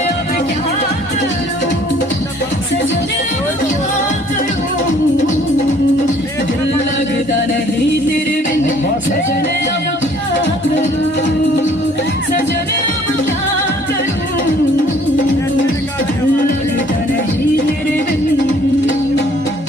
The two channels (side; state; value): both; normal; correlation 0.58